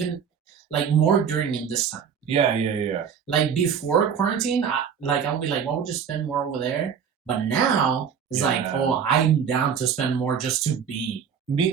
Like more during in this time. Yeah. Like before quarantine, I'll be like, what would you spend more over there? But now it's like, oh, I'm down to spend more just to be.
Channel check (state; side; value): quieter; left; 7.4 dB